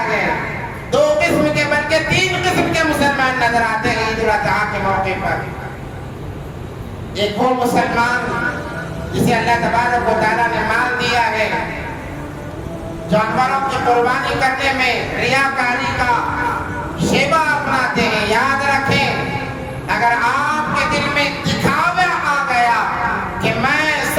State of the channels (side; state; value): both; identical; correlation 1.00